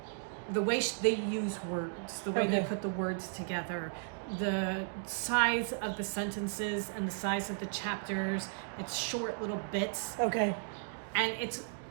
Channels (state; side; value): silent; left; digital silence